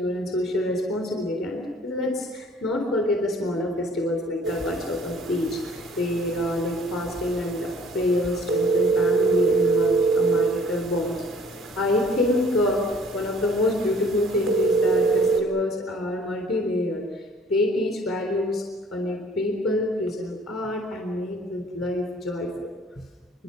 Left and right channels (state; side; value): normal; both; correlation 0.54